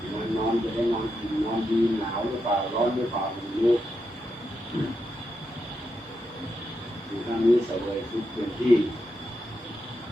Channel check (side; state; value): both; normal; correlation 0.84